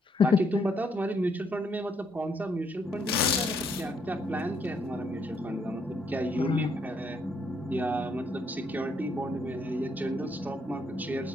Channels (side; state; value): both; normal; correlation 0.72